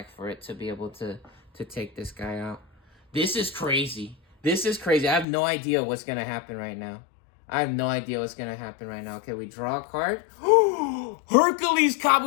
for it to be able to take this guy out. This is crazy. This is crazy. I have no idea what's going to happen right now. Okay, we draw a card. Hercules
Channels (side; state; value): right; drops out; at 5.2 s